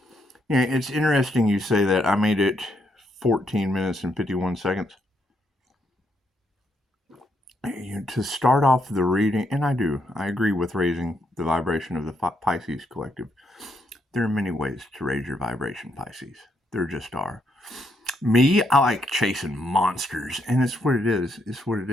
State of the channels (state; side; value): normal; both; correlation 0.76